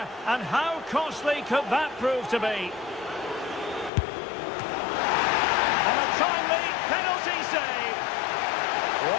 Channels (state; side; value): drops out; right; at 3.9 s